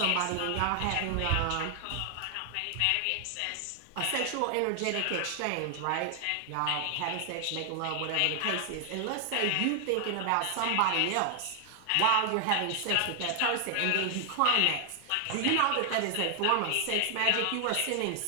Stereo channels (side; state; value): both; different; correlation 0.00